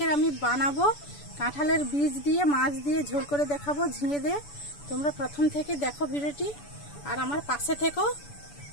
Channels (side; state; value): right; late; 6.9 ms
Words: আমি বানাবো কাঁঠালের বীজ দিয়ে মাছ দিয়ে ঝোল করে দেখাবো ঝিঙে দিয়ে। তোমরা প্রথম থেকে দেখো ভিডিওটি আর আমার পাশে থেকো।